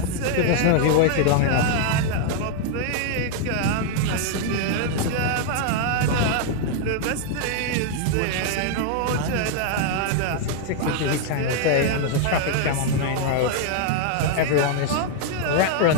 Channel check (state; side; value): different; both; correlation 0.00